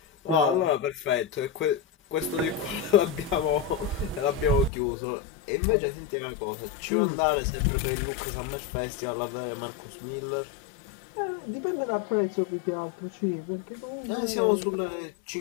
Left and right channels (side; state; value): right; drops out; at 4.7 s